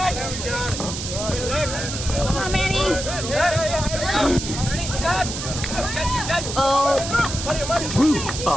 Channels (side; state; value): right; noise; hiss, 6 dB below the sound